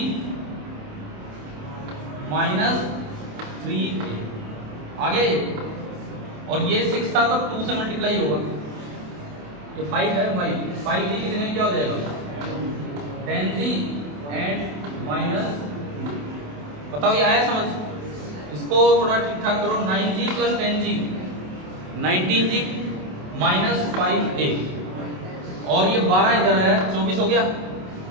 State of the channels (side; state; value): left; late; 27 ms